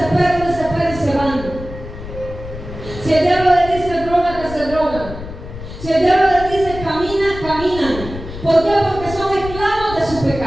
y se van. Si el diablo le dice droga, que se drogan. Si el diablo le dice camina, caminan. ¿Por qué? Porque son esclavos de su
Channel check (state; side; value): noise; left; rumble, 11 dB below the sound